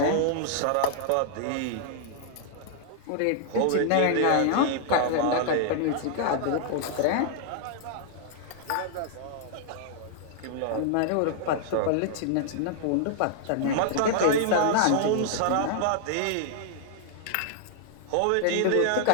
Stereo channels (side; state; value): both; different; correlation -0.01